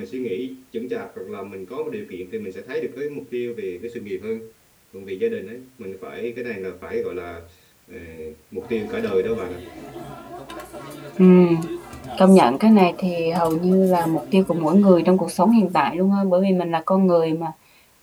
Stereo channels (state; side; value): identical; both; correlation 1.00